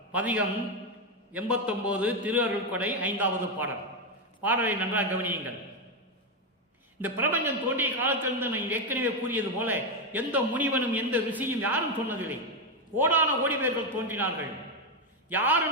பதிகம் 89, திரு அருள் கொடை 5வது பாடல். பாடலை நன்றாக கவனியுங்கள். இந்த பிரபஞ்சம் தோன்றிய காலத்திலிருந்து நான் ஏற்கனவே கூறியது போல எந்த முனிவனும் எந்த ரிஷியும் யாரும் சொன்னதில்லை. கோடான கோடி பேர்கள் தோன்றினார்கள்.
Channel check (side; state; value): both; normal; correlation 0.07